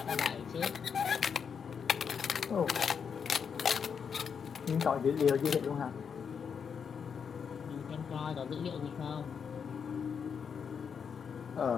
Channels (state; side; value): quieter; right; 6.7 dB